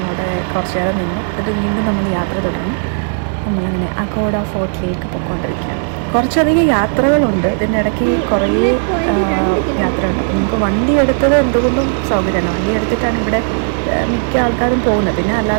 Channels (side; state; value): left; silent; digital silence